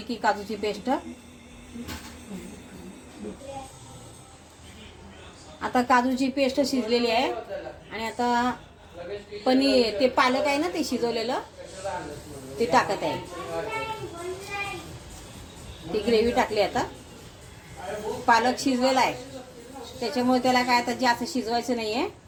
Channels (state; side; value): identical; both; correlation 1.00